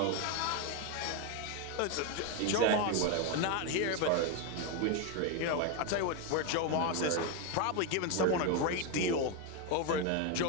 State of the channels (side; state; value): both; different; correlation 0.02